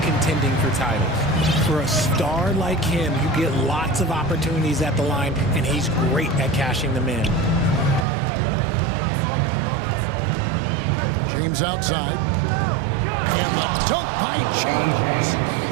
contending for titles. For a star like him, you get lots of opportunities at the line, and he's great at cashing them in. James outside. And the dunk by James.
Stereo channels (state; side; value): drops out; left; at 8.1 s